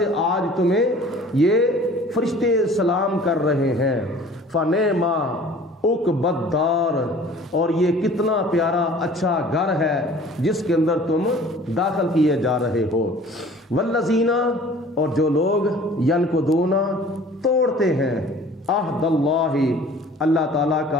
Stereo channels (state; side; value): normal; both; correlation 0.48